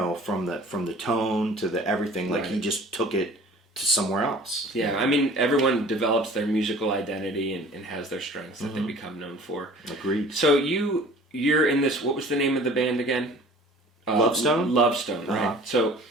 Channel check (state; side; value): normal; both; correlation 0.46